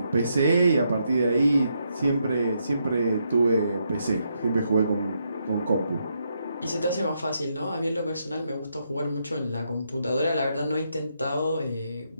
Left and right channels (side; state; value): both; inverted; correlation -0.79